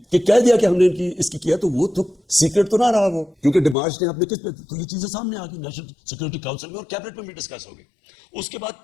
کہ کہہ دیا کہ ہم نے اس کی کیا, تو وہ تو سیکرٹ تو نہ رہا وہ, کیونکہ ڈیمارش نے آپ نے کس پہ, تو یہ چیزیں سامنے آ گئی نیشنل سیکورٹی کاؤنسل میں اور کیبنٹ میں بھی ڈسکس ہو گئی. اس کے بعد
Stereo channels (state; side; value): drops out; right; at 3.8 s